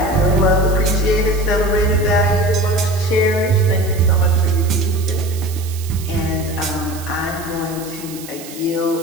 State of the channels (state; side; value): noise; right; hiss, 15 dB below the sound